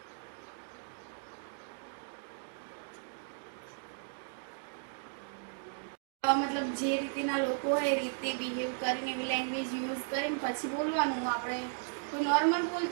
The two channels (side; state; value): left; silent; digital silence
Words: મતલબ જે રીતના લોકો હોય એ રીતે બિહેવ કરીને એવી લેંગ્વેજ યુઝ કરીને પછી બોલવાનું. આપણે કોઈ નોર્મલ